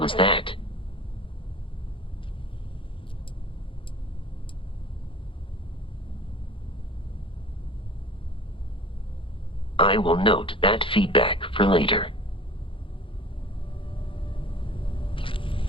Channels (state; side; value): late; right; 0.25 ms